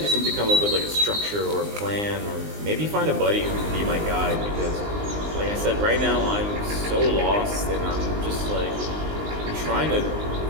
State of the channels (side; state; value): left; late; 19 ms